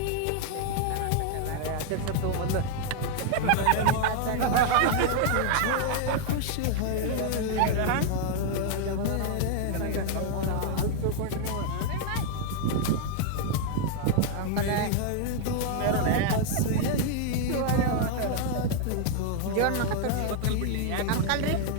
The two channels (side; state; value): both; different; correlation 0.00